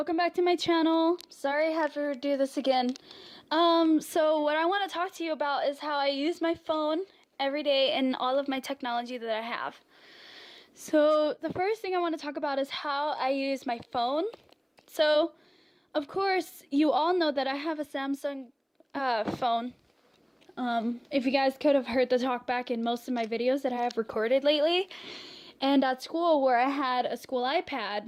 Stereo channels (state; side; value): identical; both; correlation 1.00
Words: back to my channel. Sorry I have to do this again. So what I want to talk to you about is how I use my phone every day and all of my technology that I have. So the first thing I want to talk about is how I use my phone. So, of course, you all know that I have a Samsung phone. If you guys could have heard the talk back in most of my videos that I have recorded lately. And at school where I had a school